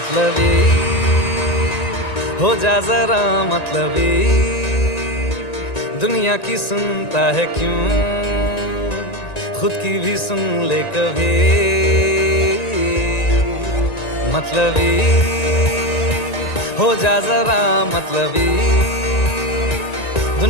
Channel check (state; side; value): late; right; 1.9 ms